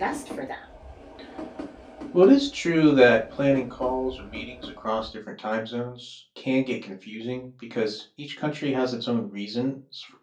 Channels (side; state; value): both; identical; correlation 1.00